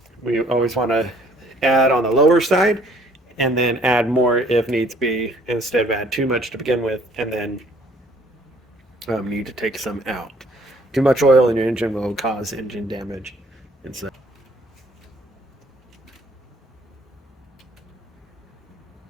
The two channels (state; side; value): normal; both; correlation 0.59